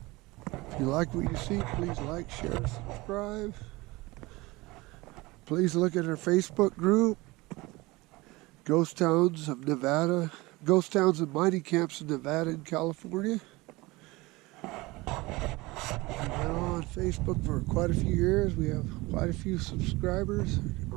you like what you see, please like, share, subscribe. Please look at our Facebook group. Ghost Towns of Nevada, Ghost Towns and Mining Camps in Nevada and California. We've been on Facebook for quite a few years. We have quite a few subscribers,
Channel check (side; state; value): left; quieter; 22.0 dB